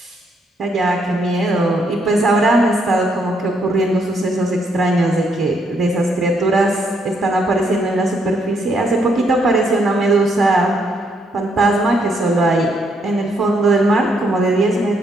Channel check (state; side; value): normal; both; correlation 0.74